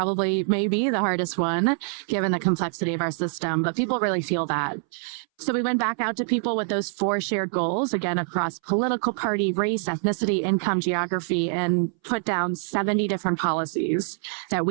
maybe the hardest one given the complexity of our system, but people really feel that. So we went back out to people with those four shared goals, again, across political party, race, ethnicity, income, geography, and put down 70 different policies that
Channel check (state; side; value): silent; left; 62 dB below the other